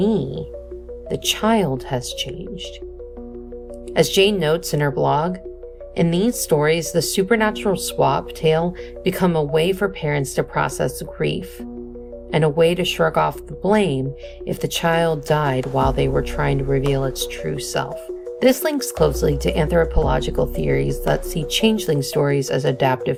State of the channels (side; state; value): both; identical; correlation 1.00